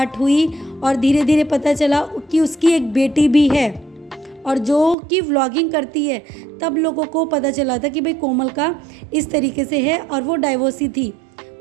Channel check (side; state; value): left; drops out; at 5.0 s